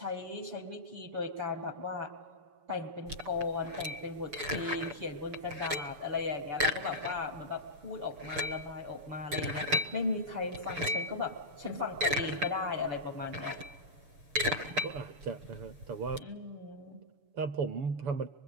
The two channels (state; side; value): late; left; 6.9 ms